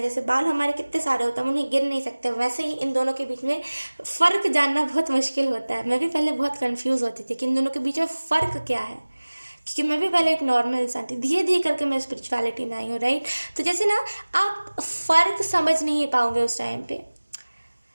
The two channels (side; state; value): both; inverted; correlation -1.00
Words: जैसे बाल हमारे कितने सारे होते हैं, हम उन्हें गिन नहीं सकते, वैसे ही इन दोनों के बीच में फ़र्क जानना बहुत मुश्किल होता है। मैं भी पहले बहुत कंफ्यूज होती थी कि इन दोनों के बीच में फ़र्क क्या है, क्योंकि मैं भी पहले एक नॉर्मल इंसान थी, धीरे धीरे करके मैं स्पिरिचुअलिटी में आई हूँ, राइट। तो जैसे ना आप फ़र्क समझ नहीं पाओगे उस टाइम पे,